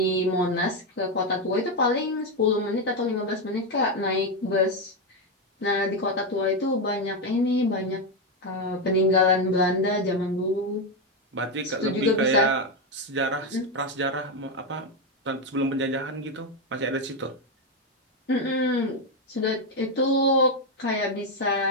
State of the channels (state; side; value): normal; both; correlation 0.07